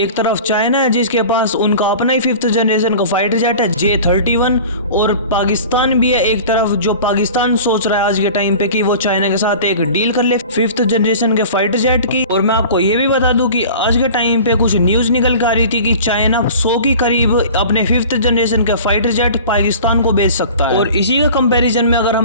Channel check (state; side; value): inverted; both; correlation -0.40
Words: तरफ चाइना है जिसके पास उनका अपना ही 5th जनरेशन का फाइटर जेट है J-31 और पाकिस्तान भी है एक तरफ, जो पाकिस्तान सोच रहा है आज के टाइम पे कि वो चाइना के साथ एक डील कर ले 5th जनरेशन के फाइटर जेट की। और मैं आपको ये भी बता दूं कि आज के टाइम पे कुछ न्यूज निकल के आ रही थी कि चाइना 100 के करीब अपने 5th जनरेशन के फाइटर जेट पाकिस्तान को बेच सकता है। और इसी का कंपेरिजन में अगर